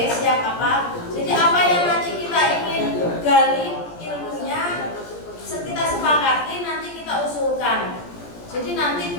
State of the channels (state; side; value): late; right; 17 ms